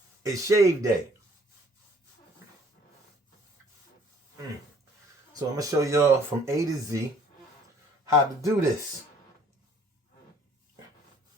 it's shave day. So I'm gonna show y'all from A to Z how to do this.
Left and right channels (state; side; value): normal; both; correlation 0.57